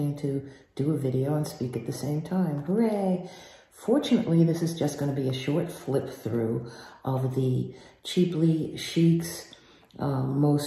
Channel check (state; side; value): identical; both; correlation 1.00